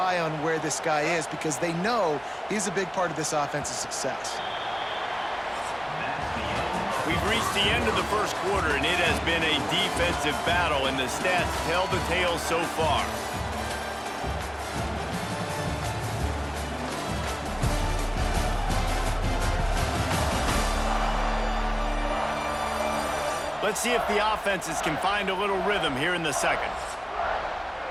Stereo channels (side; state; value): both; identical; correlation 1.00